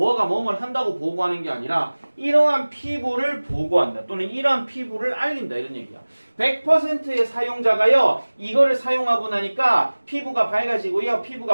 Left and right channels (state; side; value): inverted; both; correlation -1.00